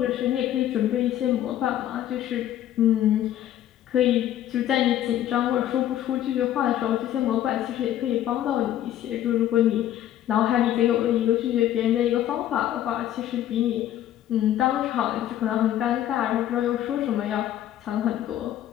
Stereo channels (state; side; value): quieter; right; 12.0 dB